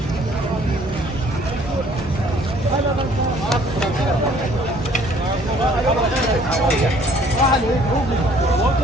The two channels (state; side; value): normal; both; correlation 0.58